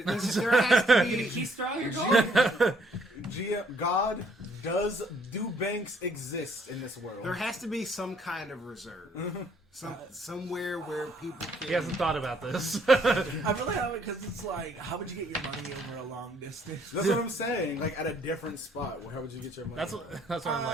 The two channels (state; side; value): normal; both; correlation 0.65